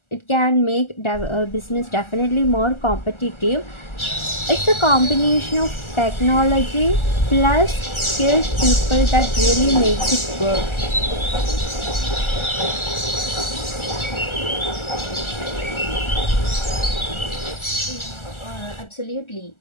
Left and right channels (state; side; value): late; right; 1.4 ms